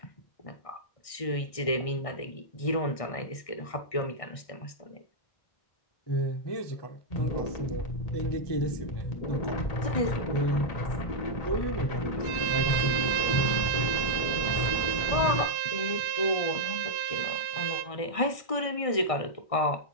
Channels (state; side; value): late; right; 1.6 ms